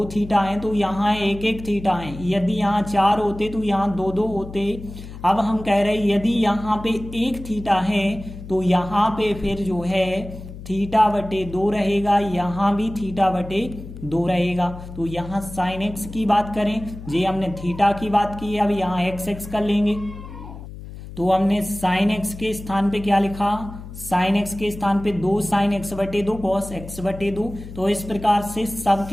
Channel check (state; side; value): noise; left; hum, 13 dB below the sound